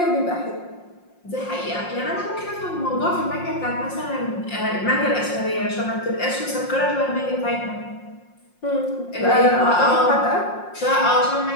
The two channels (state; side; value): late; right; 5.6 ms